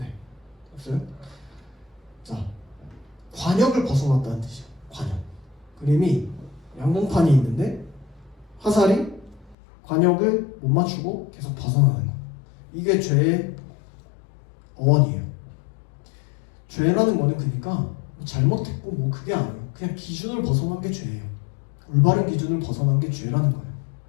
없어요? 자, 관역을 벗어났다는 뜻이에요. 관역. 그림이 양봉판이 있는데 화살이 관역을 못 맞추고 계속 벗어나는 거. 이게 죄의 어원이에요. 죄라는 거는 그러니까 잘못했고 뭐 그게 아니에요. 그냥 기준을 벗어난 게 죄예요. 올바른 기준을 벗어난 게 죄라는 거예요.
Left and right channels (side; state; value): right; drops out; at 9.6 s